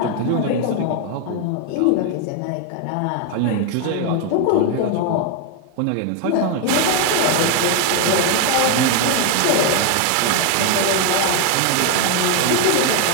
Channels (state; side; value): different; both; correlation 0.01